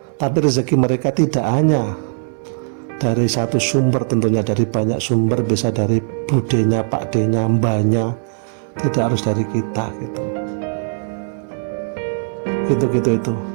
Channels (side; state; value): left; silent; 63 dB below the other